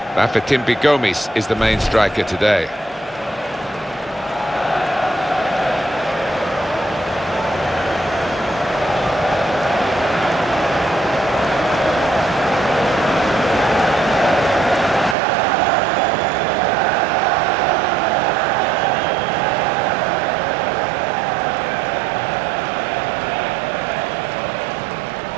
Bafétimbi Gomis is the main striker today.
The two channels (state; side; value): drops out; left; at 15.2 s